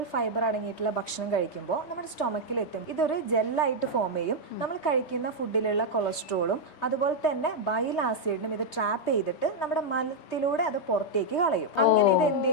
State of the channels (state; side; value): late; right; 5.1 ms